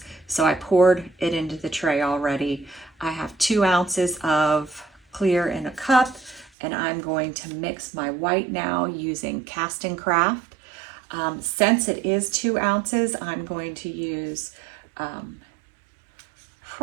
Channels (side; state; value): left; drops out; at 6.5 s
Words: So I poured it into the tray already. I have 2 ounces of clear in a cup, and I'm going to mix my white now using Cast and Craft. Since it is 2 ounces, I'm going to use